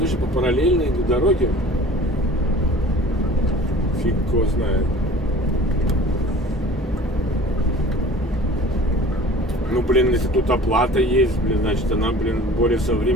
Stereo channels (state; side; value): normal; both; correlation 0.44